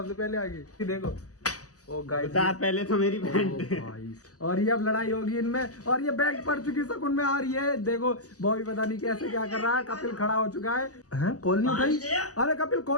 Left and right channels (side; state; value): right; late; 0.67 ms